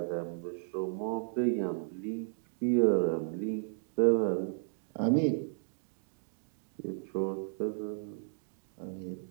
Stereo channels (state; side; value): silent; left; digital silence